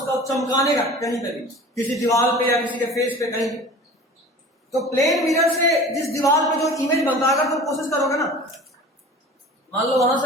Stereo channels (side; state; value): both; normal; correlation 0.40